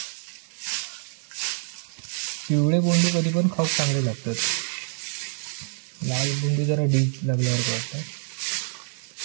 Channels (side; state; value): left; silent; 61 dB below the other